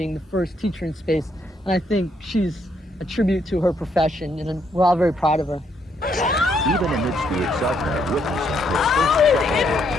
the first teacher in space. And I think she's a tribute to her profession, and we're all very proud of her. Even amidst the excitement of witnessing her first,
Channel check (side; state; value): both; normal; correlation 0.73